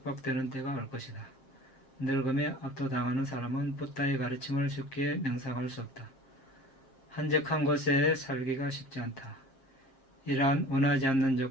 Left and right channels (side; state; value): right; late; 7.5 ms